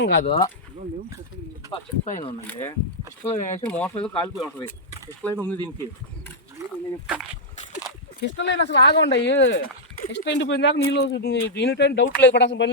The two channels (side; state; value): both; normal; correlation -0.06